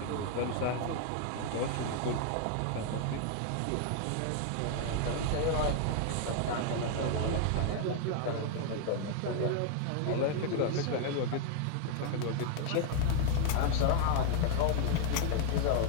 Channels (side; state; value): both; different; correlation 0.00